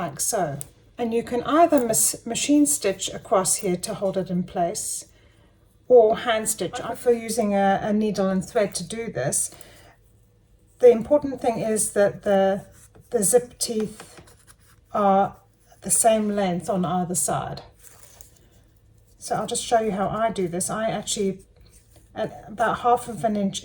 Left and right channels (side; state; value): both; identical; correlation 1.00